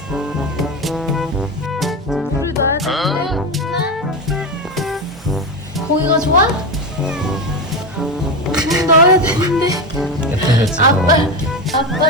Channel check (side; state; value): both; normal; correlation 0.17